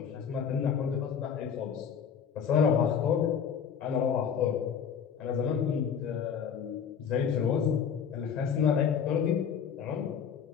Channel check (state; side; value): quieter; right; 7.4 dB